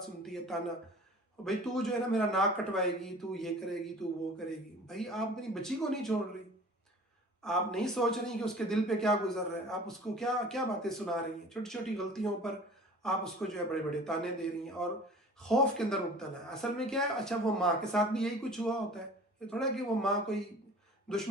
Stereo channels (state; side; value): normal; both; correlation 0.44